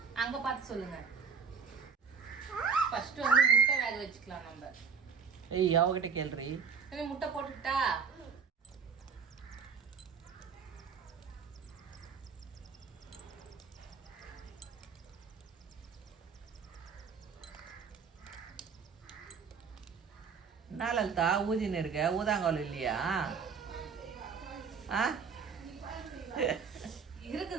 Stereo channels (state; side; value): quieter; left; 6.1 dB